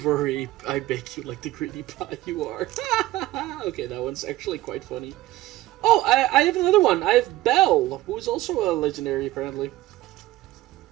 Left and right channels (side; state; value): left; quieter; 16.6 dB